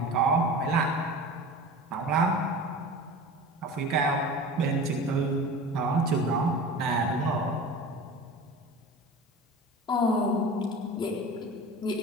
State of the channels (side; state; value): both; normal; correlation 0.35